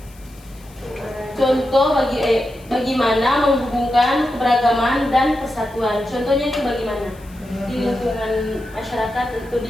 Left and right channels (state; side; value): noise; left; hiss, 26 dB below the sound